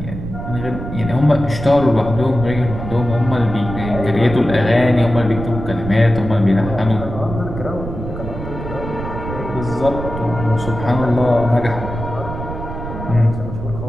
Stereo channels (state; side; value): noise; right; rumble, 8 dB below the sound